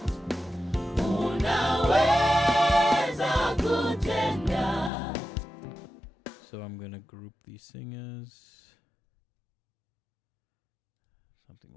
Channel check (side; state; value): right; drops out; at 4.9 s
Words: So I'm gonna group these singers. Something